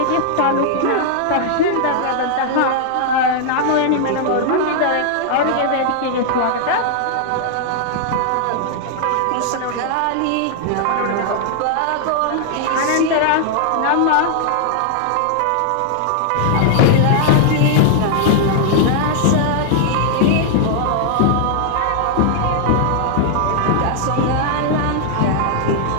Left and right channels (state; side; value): different; both; correlation 0.00